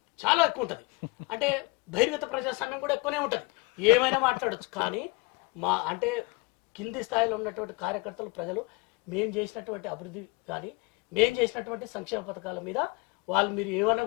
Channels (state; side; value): quieter; right; 27.3 dB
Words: చాలా ఎక్కువ ఉంటుంది. అంటే బహిర్గత ప్రజాస్వామ్యం కూడా ఎక్కువనే ఉంటుంది, ఏమైనా మాట్లాడచ్చు. కానీ అంటే కింది స్థాయిలో ఉన్నటువంటి కార్యకర్తలు, ప్రజలు మేము చేసినటువంటి అభివృద్ధి కానీ మేము చేసినటువంటి సంక్షేమ పథకాల మీద వాళ్ళు మీరు ఏమన్నా